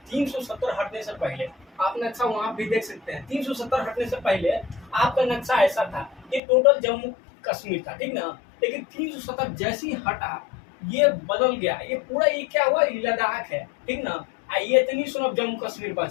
370 हटने से पहले आप नक्शा वहां भी देख सकते हैं। 370 हटने से पहले आपका नक्शा ऐसा था, ये टोटल जम्मू कश्मीर था, ठीक ना। लेकिन 370 जैसे ही हटा ये बदल गया, ये पूरा ये क्या हुआ, ये लद्दाख है, ठीक ना। ये इतनी सुनो अब जम्मू कश्मीर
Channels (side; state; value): right; drops out; at 6.4 s